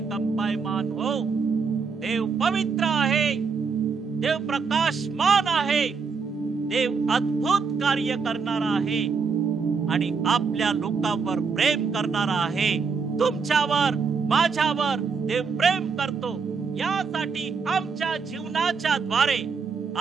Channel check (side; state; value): left; quieter; 5.4 dB